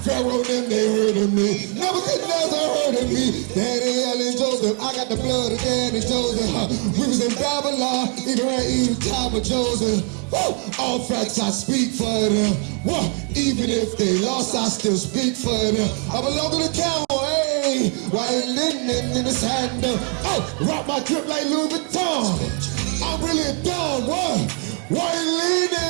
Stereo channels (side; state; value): left; quieter; 38.0 dB